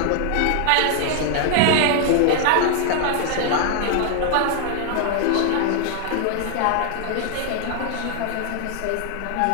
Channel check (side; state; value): both; different; correlation 0.00